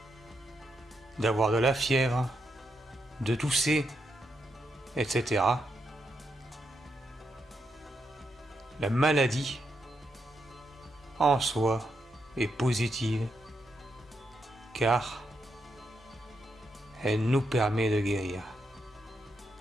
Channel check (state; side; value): normal; both; correlation 0.82